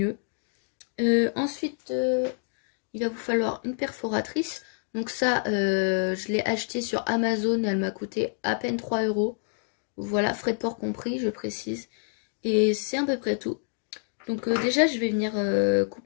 Ensuite, il va vous falloir une perforatrice. Donc ça, je l'ai acheté sur Amazon et elle m'a coûté à peine 3 €. Voilà, frais de port compris, je précise. Et c'est à peu près tout. Donc déjà, je vais venir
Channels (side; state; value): right; silent; 60 dB below the other